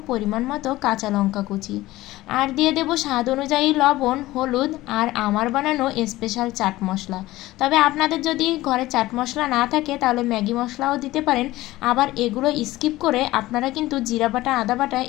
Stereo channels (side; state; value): right; quieter; 17.4 dB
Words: পরিমাণ মতো কাঁচা লঙ্কা কুচি, আর দিয়ে দেব স্বাদ অনুযায়ী লবণ, হলুদ, আর আমার বানানো স্পেশাল চাট মশলা। তবে আপনাদের যদি ঘরে চাট মশলা না থাকে তাহলে ম্যাগি মশলাও দিতে পারেন। আবার এগুলো স্কিপ করে আপনারা কিন্তু জিরা বাটা, আদা বাটা